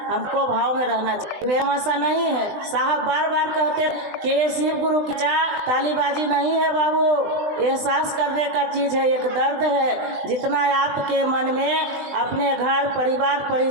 भाव में रहना चाहिए, ऐसा नहीं है। साहब बार बार कहते हैं कि ये शिव गुरु की तालीबाजी नहीं है बाबू, एहसास करने का चीज है, एक दर्द है। जितना आपके मन में अपने घर परिवार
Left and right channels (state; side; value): late; left; 20 ms